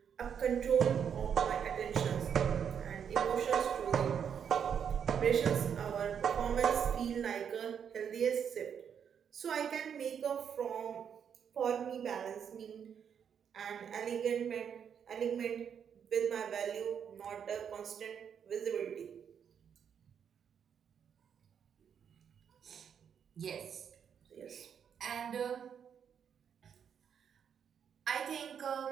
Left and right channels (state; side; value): quieter; left; 7.8 dB